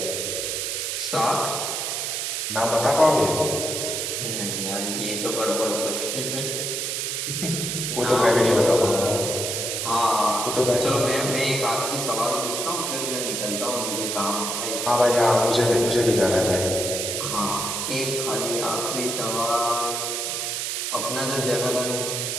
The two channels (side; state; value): right; noise; hiss, 2 dB below the sound